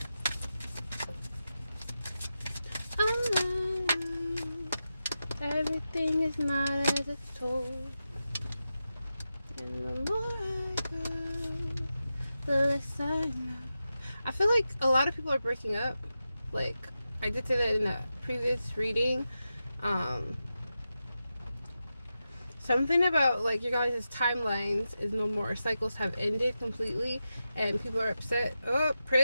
Everything is not as it's told. And the more I go, the less I know. I feel like a lot of people are breaking up. Like, I did say that in a previous reading. Something about, like, your guys' timelines is no more. Cycles have ended completely, and people are upset. Oh,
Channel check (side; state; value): both; inverted; correlation -0.91